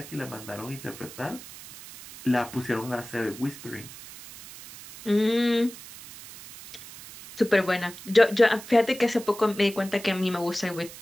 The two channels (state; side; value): noise; right; hiss, 16 dB below the sound